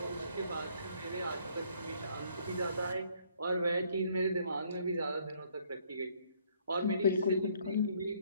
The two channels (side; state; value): both; inverted; correlation -0.64